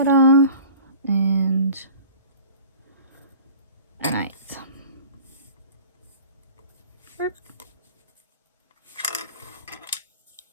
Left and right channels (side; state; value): both; inverted; correlation -0.44